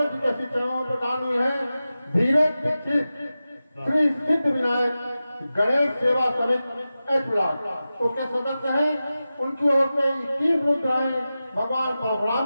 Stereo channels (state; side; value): inverted; both; correlation -0.94